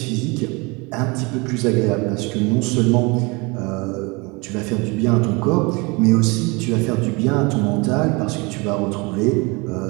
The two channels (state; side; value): quieter; left; 27.4 dB